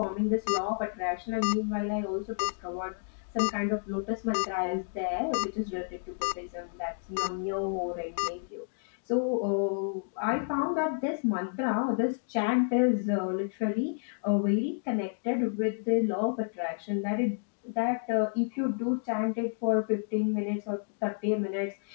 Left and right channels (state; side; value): silent; right; digital silence